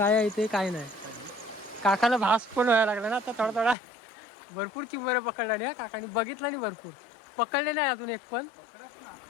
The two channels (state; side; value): drops out; right; at 3.8 s